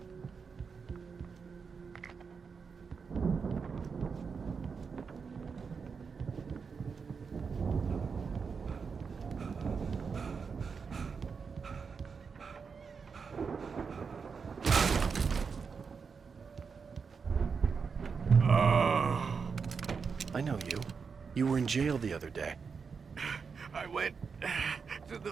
I know you. You were in jail the other day. I went to the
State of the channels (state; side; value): quieter; left; 5.6 dB